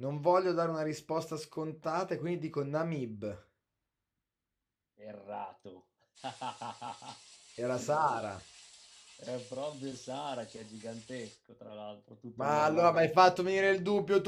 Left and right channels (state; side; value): identical; both; correlation 1.00